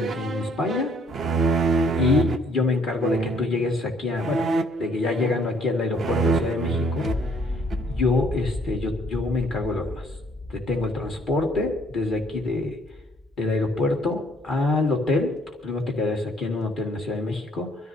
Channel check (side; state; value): both; normal; correlation 0.63